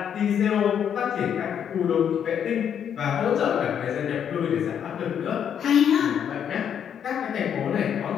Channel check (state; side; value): quieter; right; 8.6 dB